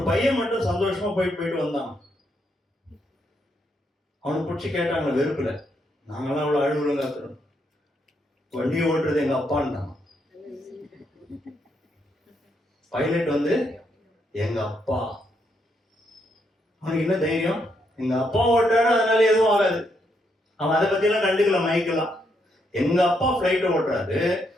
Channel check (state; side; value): normal; both; correlation 0.77